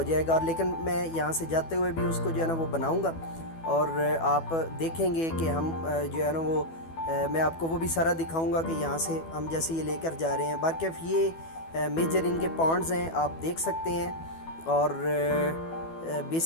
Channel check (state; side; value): late; right; 12 ms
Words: जाएगा। और लेकिन मैं यहाँ से जाते हुए भी उसको जो है ना वो बनाऊँगा, और आप देखेंगे कि हम जो है ना वो मैं आपको वो भी सारा दिखाऊँगा कि यहाँ से हम जैसे ये लेकर जा रहे हैं। बाकी ये मेजर इनके पॉइंट्स हैं, आप देख सकते हैं। और